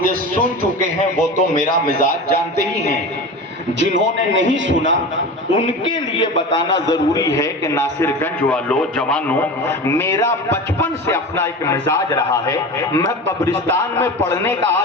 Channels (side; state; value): both; normal; correlation 0.30